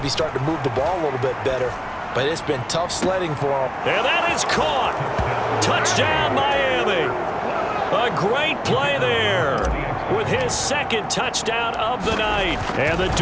start to move the ball a little bit better. But it's been tough sledding for them. And that is caught. Touchdown, Miami. A great play there with his 2nd touchdown of the night. And the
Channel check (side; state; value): both; identical; correlation 1.00